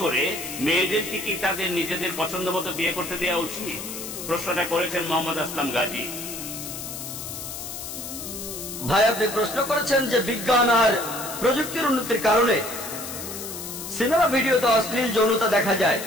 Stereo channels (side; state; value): left; noise; hiss, 8 dB below the sound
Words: করে মেয়েদেরকে কি তাদের নিজেদের পছন্দ মতো বিয়ে করতে দেওয়া উচিত? প্রশ্নটা করেছেন মোহাম্মদ আসলাম গাজী। ভাই, আপনি প্রশ্ন করেছেন যে বিজ্ঞান আর প্রযুক্তির উন্নতির কারণে সিনেমা ভিডিওতে অশ্লীল যৌনতা দেখা যায়,